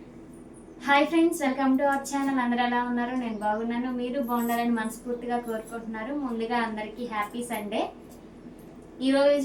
Hi friends, welcome to our channel. అందరూ ఎలా ఉన్నారు? నేను బాగున్నాను, మీరు బాగుండాలని మనస్ఫూర్తిగా కోరుకుంటున్నారు. ముందుగా అందరికీ హ్యాపీ సండే.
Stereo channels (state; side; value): identical; both; correlation 1.00